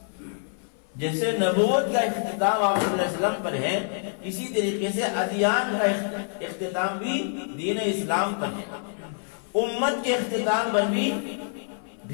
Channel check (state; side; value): silent; right; 57 dB below the other